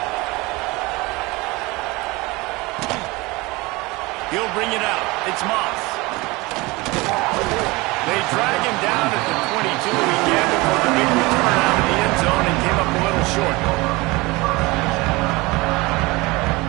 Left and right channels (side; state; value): left; quieter; 23.2 dB